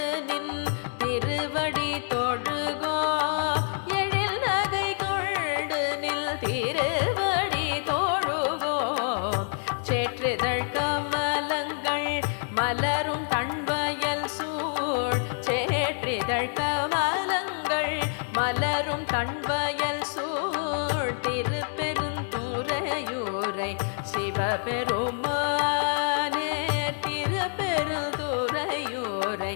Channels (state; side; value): silent; right; 60 dB below the other